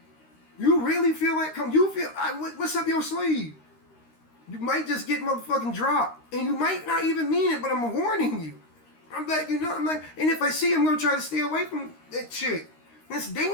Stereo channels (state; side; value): late; right; 13 ms